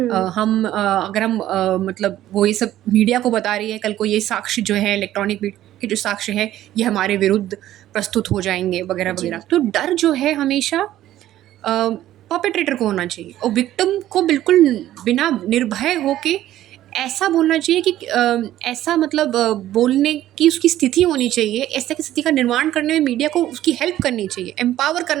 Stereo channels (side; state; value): left; quieter; 13.4 dB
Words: हम मतलब वो ये सब मीडिया को बता रही है, कल को ये साक्ष्य जो है इलेक्ट्रॉनिक के जो साक्ष्य हैं ये हमारे विरुद्ध प्रस्तुत हो जाएंगे वगैरह वगैरह। तो डर जो है हमेशा परपेट्रेटर को होना चाहिए, और विक्टिम को बिल्कुल बिना निर्भय होके ऐसा बोलना चाहिए कि ऐसा मतलब बोलने की उसकी स्थिति होनी चाहिए। ऐसा की स्थिति का निर्माण करने में मीडिया को उसकी हेल्प करनी चाहिए, एम्पावर